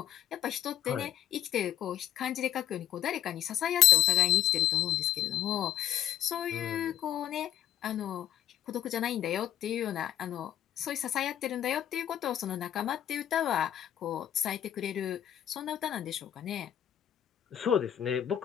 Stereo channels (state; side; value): quieter; right; 11.7 dB